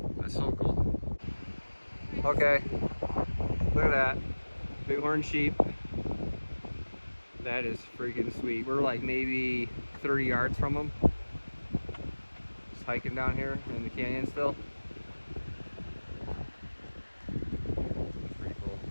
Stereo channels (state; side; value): inverted; both; correlation -1.00